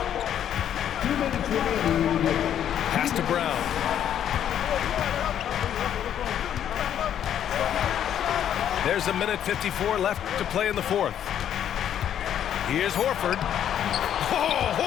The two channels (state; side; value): quieter; right; 10.0 dB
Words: Pass to Brown. There's 1:54 left to play in the fourth. Here's Horford. Oh,